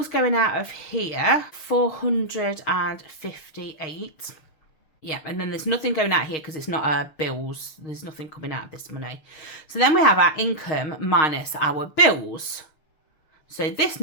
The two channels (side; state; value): right; late; 6.4 ms